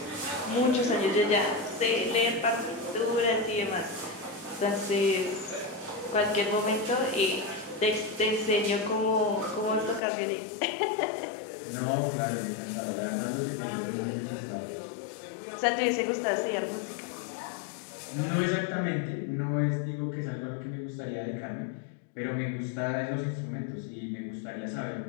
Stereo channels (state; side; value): drops out; right; at 10.0 s